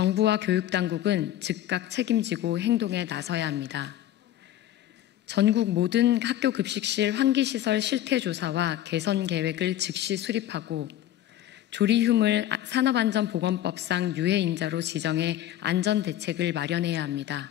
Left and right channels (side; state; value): right; quieter; 12.7 dB